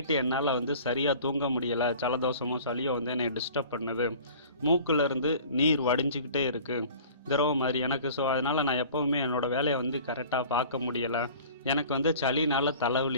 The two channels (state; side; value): inverted; both; correlation -0.45